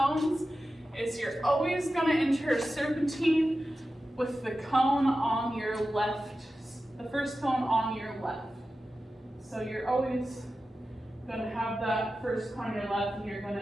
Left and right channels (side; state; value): both; normal; correlation 0.93